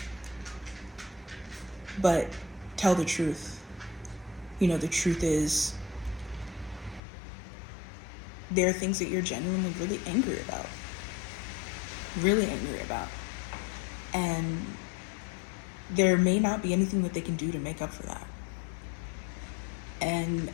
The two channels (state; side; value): drops out; right; at 7.0 s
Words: but tell the truth. The truth is there are things that you're genuinely really angry about. And there may not be anything that they can do to make up for that. And